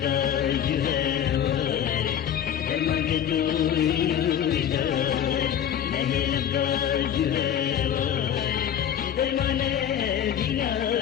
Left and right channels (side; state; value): right; quieter; 9.5 dB